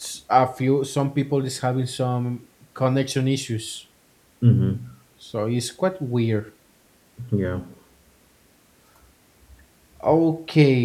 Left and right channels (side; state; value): both; identical; correlation 1.00